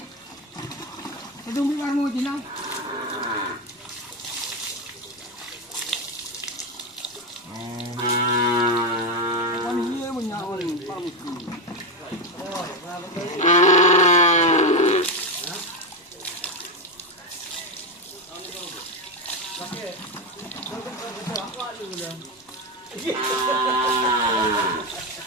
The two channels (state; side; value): normal; both; correlation 0.11